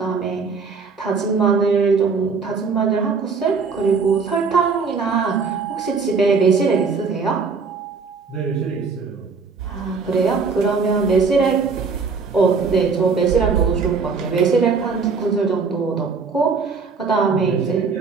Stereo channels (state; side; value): quieter; left; 5.0 dB